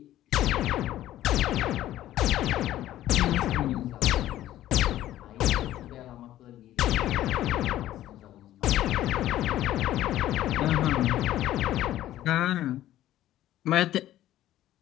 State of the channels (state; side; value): quieter; right; 13.5 dB